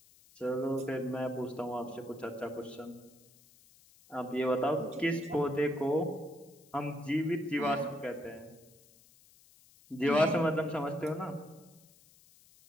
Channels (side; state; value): left; noise; hiss, 26 dB below the sound